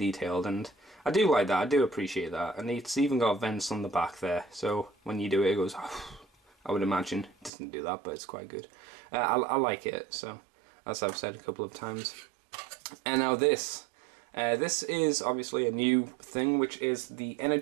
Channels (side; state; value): left; drops out; at 7.5 s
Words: and I do like that, I do appreciate that, and it's even got vents on the back there, so when you do it, it goes, I would imagine. It doesn't do that, but it's quite good. I like it, so as I've said a couple of times. And now this is obviously a new thing, which is the